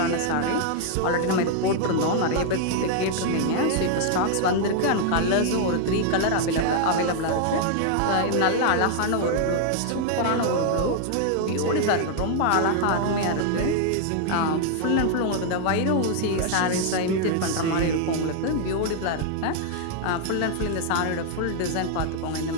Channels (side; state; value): both; different; correlation 0.00